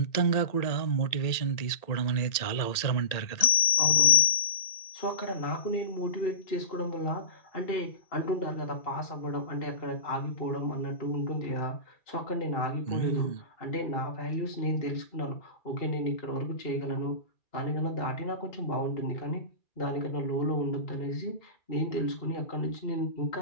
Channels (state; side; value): late; right; 2.3 ms